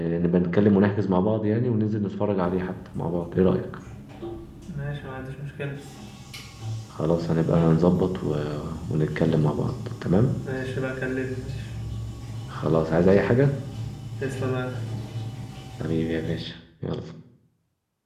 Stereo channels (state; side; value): identical; both; correlation 1.00